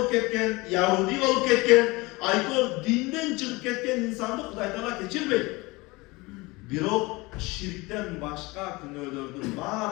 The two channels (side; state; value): right; quieter; 23.5 dB